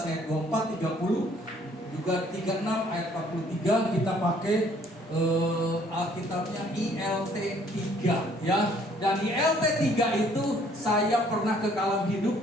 24 30 juga 36 ayat 43 kita pakai Alkitabnya ILT 3 ya. Dan ILT 3 itu saya pernah ke Kalam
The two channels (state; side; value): normal; both; correlation 0.61